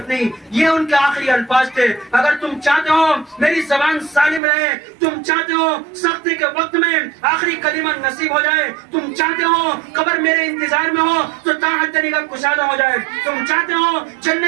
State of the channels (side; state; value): left; drops out; at 4.4 s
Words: نہیں، یہ ان کے آخری الفاظ تھے۔ اگر تم چاہتے ہو میری زبان سالم رہے، تم چاہتے ہو سختی کے وقت میں آخری کلمہ نصیب ہو جائے، تم چاہتے ہو قبر میرے انتظار میں ہو تو تاحت نگاہ کشادہ ہو جائے، تم چاہتے ہو